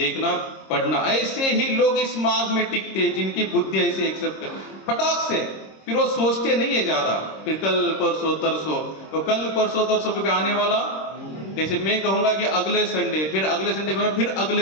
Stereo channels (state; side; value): late; right; 26 ms